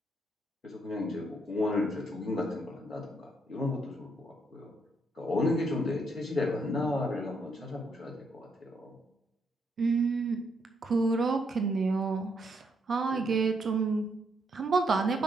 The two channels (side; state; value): both; normal; correlation 0.75